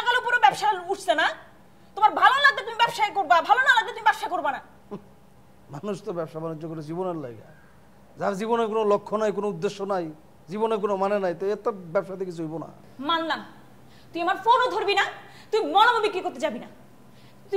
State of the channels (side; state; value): both; identical; correlation 1.00